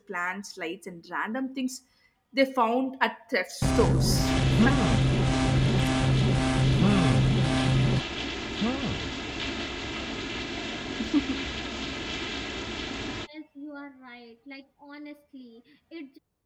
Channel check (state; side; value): identical; both; correlation 1.00